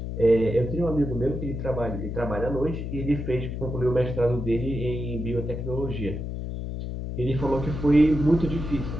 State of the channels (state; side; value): noise; left; hum, 5 dB below the sound